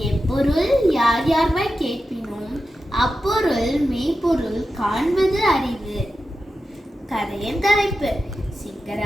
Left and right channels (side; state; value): both; normal; correlation 0.91